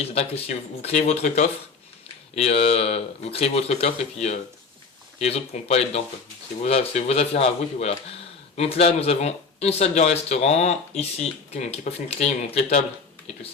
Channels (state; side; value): quieter; right; 4.7 dB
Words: c'est-à-dire que si vous créez votre coffre, et puis les autres pourront pas aller dedans quoi. C'est vos affaires à vous et puis voilà. Donc là nous avons une salle de restaurant, ici, qui n'est pas fait une clé, donc les tables et tout